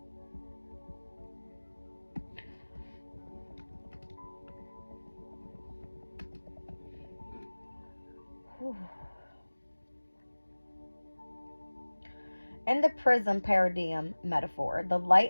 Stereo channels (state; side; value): inverted; both; correlation -1.00